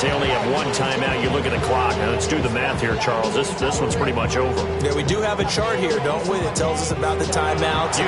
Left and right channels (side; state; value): both; identical; correlation 1.00